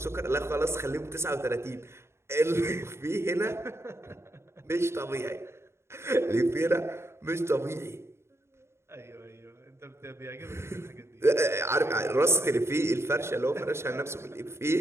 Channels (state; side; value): late; left; 0.13 ms